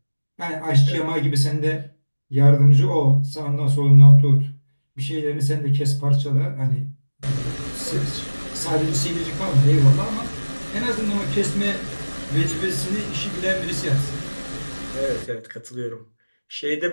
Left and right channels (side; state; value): both; inverted; correlation -1.00